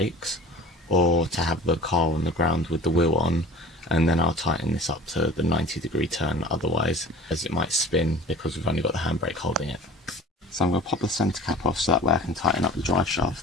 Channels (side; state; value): both; normal; correlation 0.42